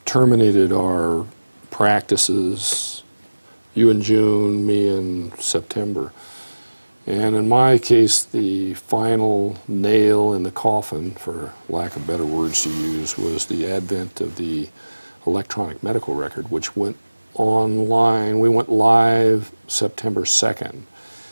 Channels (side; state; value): both; inverted; correlation -1.00